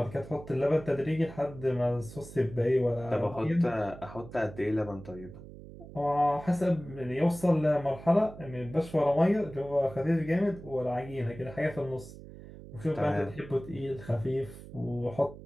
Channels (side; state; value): right; noise; hum, 15 dB below the sound